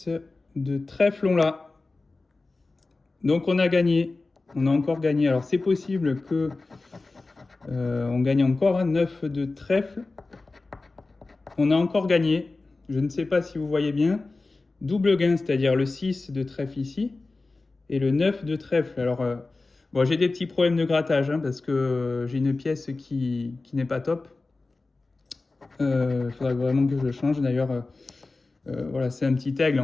de trèfle, on l'a. Donc on a gagné, on a encore gagné. Alors c'est possible que on gagne encore, hein, 9 de trèfle. On a encore gagné, je ne sais pas si vous voyez bien. Double gain, c'est-à-dire le 6 de trèfle ici et le 9 de trèfle. Alors bon, j'ai des petits problèmes de grattage, hein, parce que j'ai une pièce qui n'est pas top. Il faudra vraiment que je le change. D'ailleurs, voilà, c'est un petit aigle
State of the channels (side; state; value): right; quieter; 3.5 dB